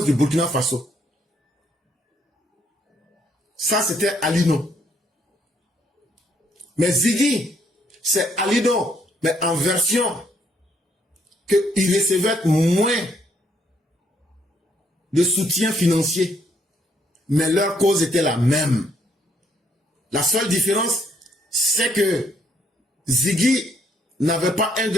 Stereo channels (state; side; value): normal; both; correlation 0.70